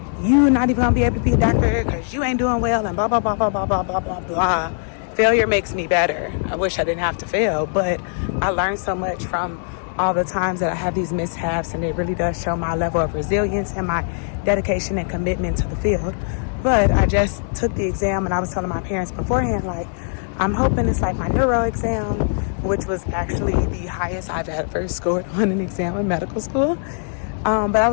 you not even gonna be able to be a doctor because you ain't doing well and blah, blah, blah, blah, blah, blah, blah, blah, blah. Failure makes me better. I wish I didn't have to fail, but I learned so much from all the times that I have these mishaps, and it really does show my level of resilience and my dedication and commitment to the field. But I just took the exam, and I was telling my parents beforehand, I'm hoping it's like my neuro exam, which was actually the highest I've ever scored on an exam in medical school. But I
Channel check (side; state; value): right; silent; 65 dB below the other